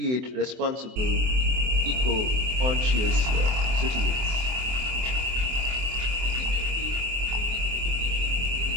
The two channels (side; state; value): left; late; 24 ms